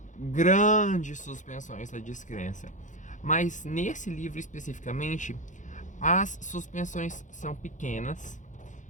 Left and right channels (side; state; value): right; late; 0.36 ms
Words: grandes suspensões da descrença. Mas nesse livro especificamente, as suspensões são pequenas